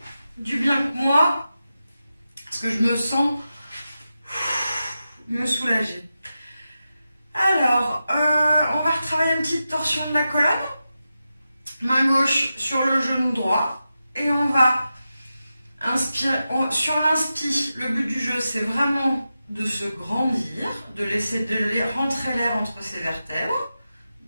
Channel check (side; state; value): both; inverted; correlation -0.91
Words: du bien que moi, parce que je me sens me soulager. Alors, on va retravailler une petite torsion de la colonne. Main gauche sur le genou droit. Et on va inspirer. Sur l'inspire, le but du jeu, c'est vraiment de se grandir, de laisser rentrer l'air entre ses vertèbres.